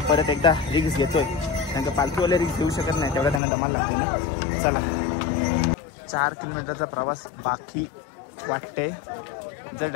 परत एकदा रिक्स घेतोय. कारण का पालखीवाले रिक्स घेऊ शकत नाही. तेवढा त्यांना दमाल लागते ना. चला 4 किलोमीटरचा प्रवास बाकी वाटते. जर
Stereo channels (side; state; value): right; drops out; at 3.4 s